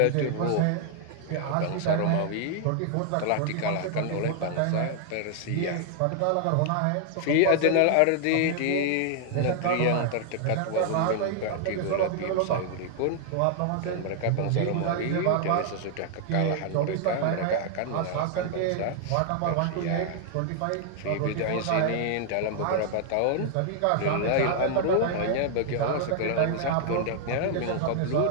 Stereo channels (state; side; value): different; both; correlation 0.00